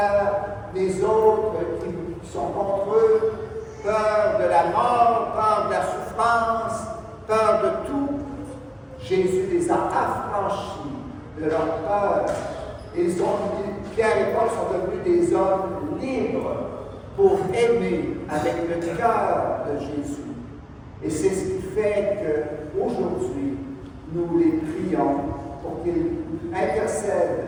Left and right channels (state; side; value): identical; both; correlation 1.00